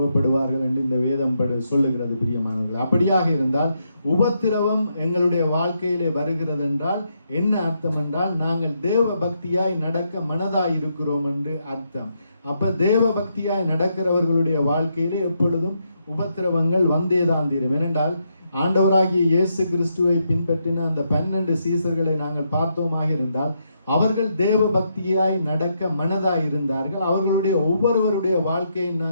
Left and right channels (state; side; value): inverted; both; correlation -0.79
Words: என்று இந்த வேதம் சொல்லுகிறது. பிரியமானவர்கள், அப்படியாக இருந்தால் உபத்திரவம் எங்களுடைய வாழ்க்கையிலே வருகிறது என்றால் என்ன அர்த்தம் என்றால் நாங்கள் தேவ பக்தியாய் நடக்க மனதாய் இருக்கிறோம் என்று அர்த்தம். அப்ப தேவ பக்தியாய் நடக்கிறவர்களுடைய வாழ்க்கையிலே எப்பொழுதும் உபத்திரவங்கள் வந்தேதான் தீரும். ஏனென்றால் ஆண்டவராகிய இயேசு கிறிஸ்துவை பின்பற்றின அந்த 12 சீசர்களை நாங்கள் பார்த்தோமாக இருந்தால் அவர்கள் தேவ பக்தியாய் நடக்க மனதாய் இருந்தார்கள். அவர்களுடைய ஒவ்வொருவருடைய வாழ்க்கையை